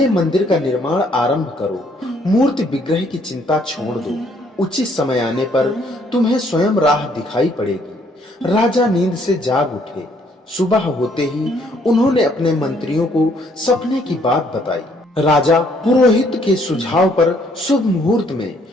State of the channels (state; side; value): normal; both; correlation 0.66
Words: मंदिर का निर्माण आरंभ करो। मूर्ति विग्रह की चिंता छोड़ दो। उचित समय आने पर तुम्हें स्वयं राह दिखाई पड़ेगी। राजा नींद से जाग उठे। सुबह होते ही उन्होंने अपने मंत्रियों को सपने की बात बताई। राजा पुरोहित के सुझाव पर शुभ मुहूर्त में